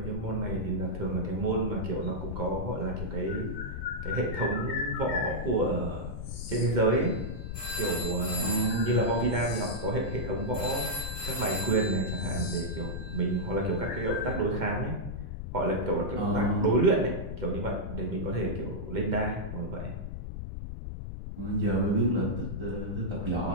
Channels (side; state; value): left; noise; rumble, 6 dB below the sound